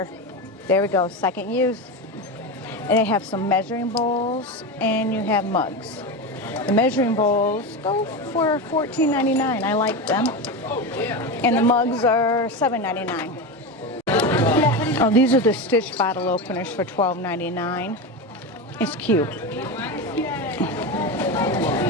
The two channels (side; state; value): both; normal; correlation 0.19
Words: There we go, second use. And they have some measuring bowls and you have mugs. The measuring bowls go for $14.99. I like them. And the mugs are $7.99. Oh, these are the Stitch bottle openers for $12.99. It's cute.